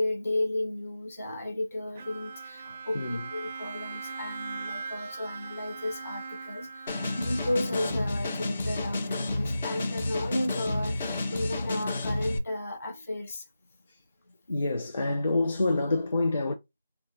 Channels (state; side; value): inverted; both; correlation -0.91